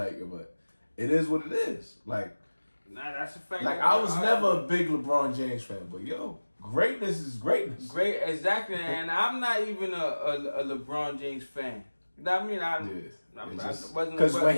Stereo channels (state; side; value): inverted; both; correlation -1.00